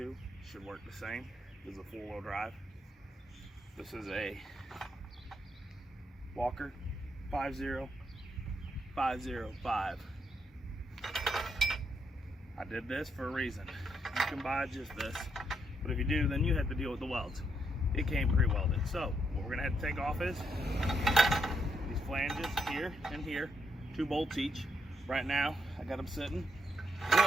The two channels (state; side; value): normal; both; correlation 0.78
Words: Should work the same. This is a four-wheel drive. This is a Walker 50505. I did this for a reason. You can buy just this, but if you do, then you have to deal with the welds. It came pre-welded. So what we're gonna have to take off is these flanges here and here, 2 bolts each. Right now, I got them sitting.